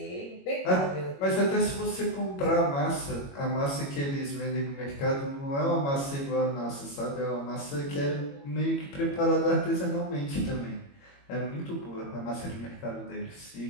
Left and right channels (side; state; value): right; late; 21 ms